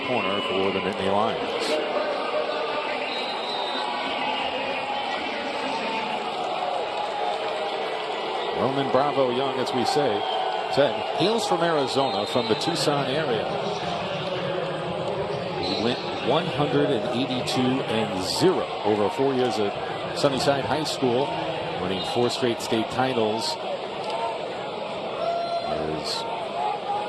corner for the Nittany Lions. Roman Bravo Young, as we said, hails from Arizona, from the Tucson area. He went 182-0 over 4 years at Sunnyside High School, winning 4 straight state titles.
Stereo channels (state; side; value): identical; both; correlation 1.00